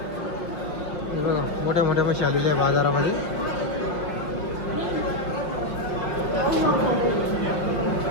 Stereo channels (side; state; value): right; late; 5.6 ms